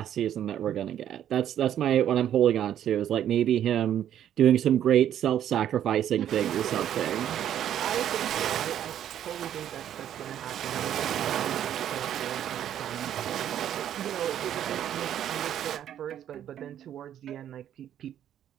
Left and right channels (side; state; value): left; quieter; 10.6 dB